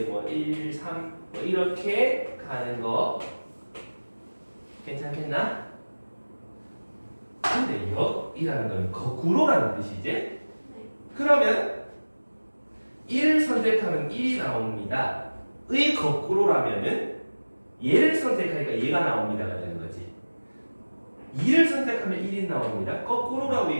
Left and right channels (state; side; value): inverted; both; correlation -1.00